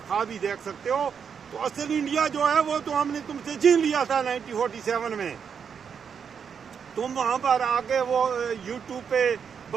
خواب ہی دیکھ سکتے ہو۔ تو اصل انڈیا جو ہے وہ تو ہم نے تم سے چھین لیا تھا 1947 میں۔ تم وہاں پر آ کے وہ یوٹیوب پہ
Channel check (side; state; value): left; quieter; 6.9 dB